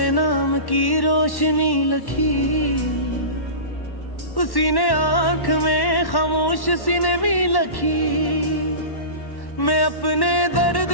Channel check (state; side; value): late; right; 1.1 ms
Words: नाम की रोशनी लखी, उसी ने आंख में खामोश सी ने भी लखी। मैं अपने दर्द